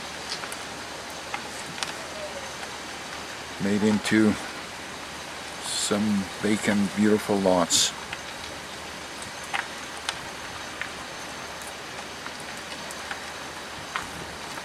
made into some vacant, beautiful lots.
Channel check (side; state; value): both; identical; correlation 1.00